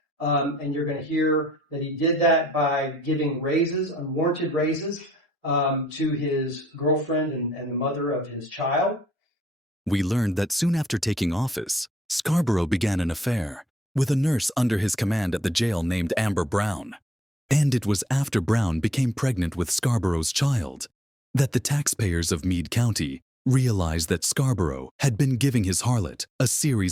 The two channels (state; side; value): normal; both; correlation 0.71